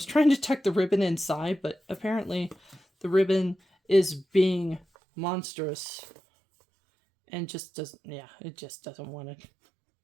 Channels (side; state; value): left; drops out; at 4.9 s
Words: trying to tuck the ribbon inside, but apparently the ribbon is being monstrous and just doesn't, it just doesn't want to